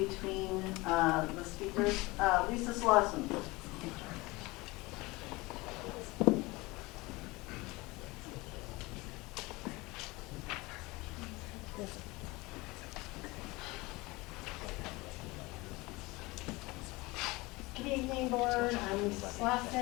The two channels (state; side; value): quieter; right; 22.7 dB